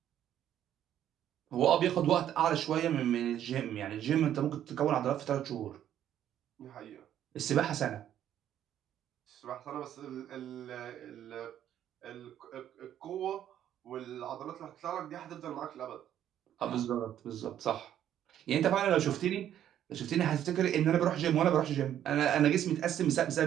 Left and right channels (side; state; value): left; quieter; 10.8 dB